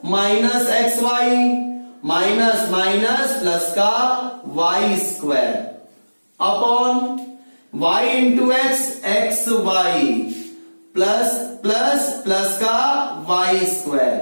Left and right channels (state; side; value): inverted; both; correlation -1.00